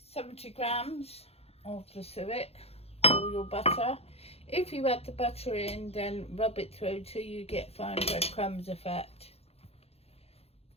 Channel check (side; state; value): right; late; 0.29 ms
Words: 70 grams of the suet or your butter. If you add the butter in, then rub it through till you get fine breadcrumbs effect.